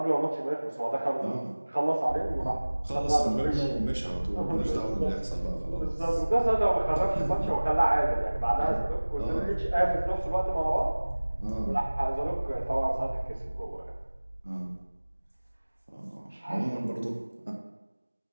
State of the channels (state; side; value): inverted; both; correlation -1.00